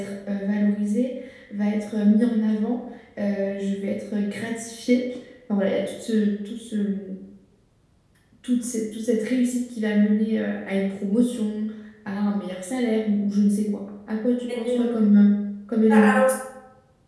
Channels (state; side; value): identical; both; correlation 1.00